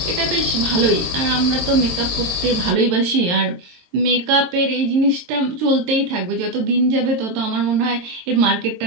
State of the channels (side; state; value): left; late; 23 ms